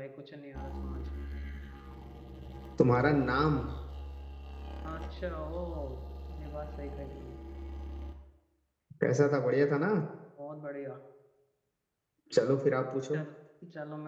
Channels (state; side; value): identical; both; correlation 1.00